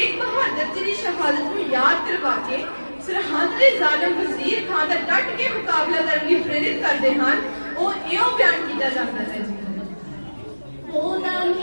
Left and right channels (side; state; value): both; inverted; correlation -1.00